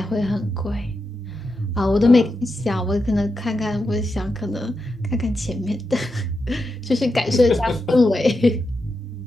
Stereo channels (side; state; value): both; normal; correlation 0.87